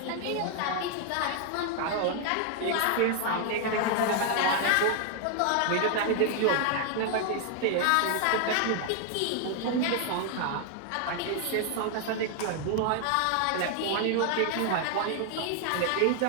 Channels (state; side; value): different; both; correlation 0.00